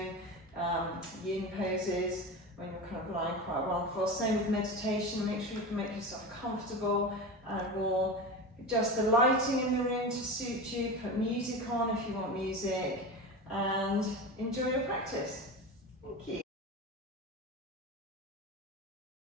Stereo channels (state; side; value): normal; both; correlation 0.25